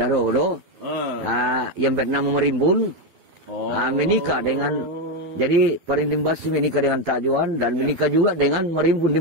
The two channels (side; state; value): left; late; 12 ms